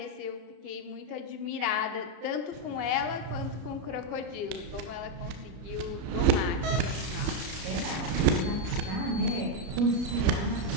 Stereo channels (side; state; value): left; late; 33 ms